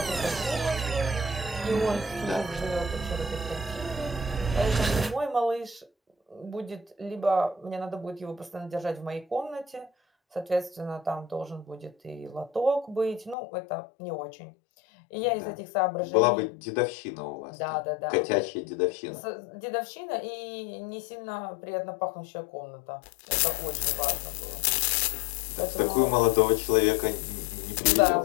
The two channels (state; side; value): drops out; right; at 13.4 s